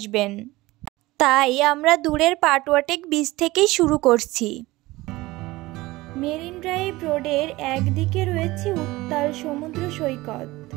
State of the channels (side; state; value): left; quieter; 19.6 dB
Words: তাই আমরা দূরের পাটুয়াটেক বীচ থেকেই শুরু করছি। মেরিন ড্রাইভ রোডের একদিকে রয়েছে উত্তাল সমুদ্র সৈকত,